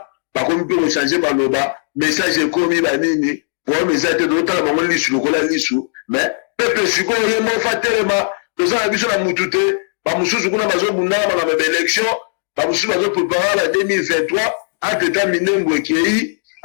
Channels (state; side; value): silent; right; digital silence